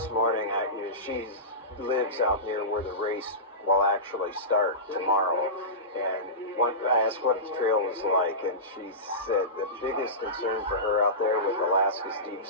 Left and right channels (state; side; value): normal; both; correlation -0.20